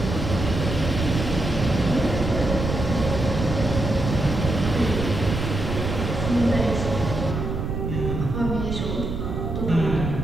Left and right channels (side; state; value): right; noise; rumble, 3 dB below the sound